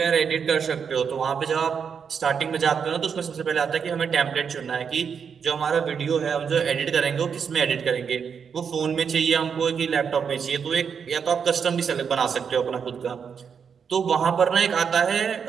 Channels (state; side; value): quieter; left; 6.7 dB